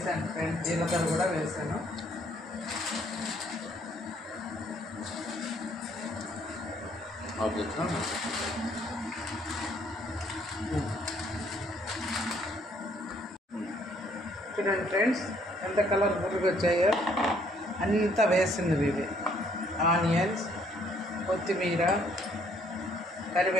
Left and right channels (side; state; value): both; normal; correlation 0.65